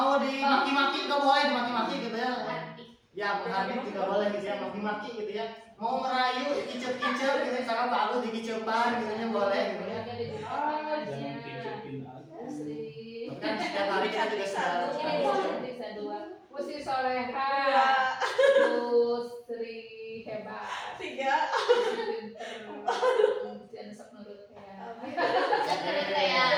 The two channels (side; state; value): both; identical; correlation 1.00